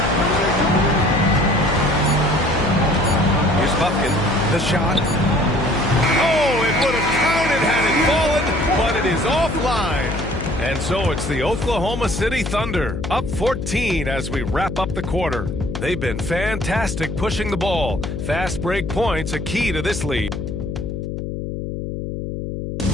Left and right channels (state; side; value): noise; left; hum, 5 dB below the sound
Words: Here's Bufkin. The shot. Oh, it would have counted had it fallen, but it is offline. And so it's the Oklahoma City Thunder, up 14 as we wrap up the quarter. They've been fantastic pushing the ball. Fast break points a key to this lead.